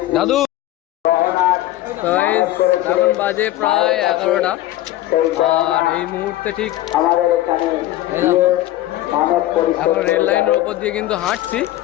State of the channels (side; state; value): right; quieter; 15.0 dB